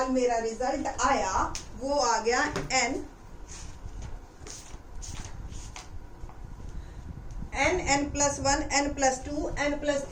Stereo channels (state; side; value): identical; both; correlation 1.00